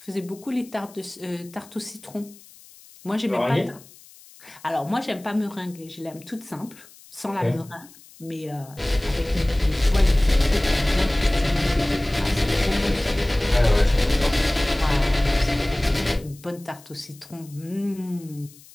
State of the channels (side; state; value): left; noise; hiss, 23 dB below the sound